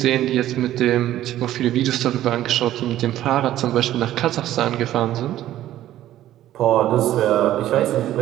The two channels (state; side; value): quieter; left; 13.3 dB